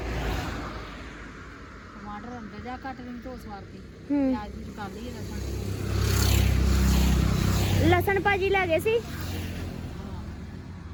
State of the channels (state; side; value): identical; both; correlation 1.00